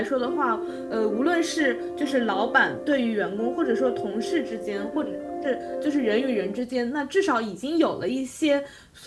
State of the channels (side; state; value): both; identical; correlation 1.00